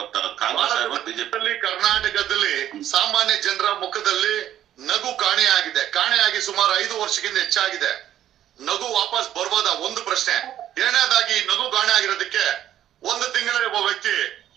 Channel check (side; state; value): left; quieter; 11.6 dB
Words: ಕಾಂಗ್ರೆಸ್ ಬಿಜೆಪಿ. ಕರ್ನಾಟಕದಲ್ಲಿ ಸಾಮಾನ್ಯ ಜನರ ಮುಖದಲ್ಲಿ ನಗು ಕಾಣೆಯಾಗಿದೆ. ಕಾಣೆಯಾಗಿ ಸುಮಾರು 5 ವರ್ಷಕ್ಕಿಂತ ಹೆಚ್ಚಾಗಿದೆ. ನಗು ವಾಪಸ್ ಬರ್ಬೋದಾ? ಒಂದು ಪ್ರಶ್ನೆ. ಎರಡನೇದಾಗಿ ನಗು ಕಾಣೆ ಆಗಿರೋದಕ್ಕೆ ಒಂದು ತಿಂಗಳಲ್ಲಿ ಒಬ್ಬ ವ್ಯಕ್ತಿ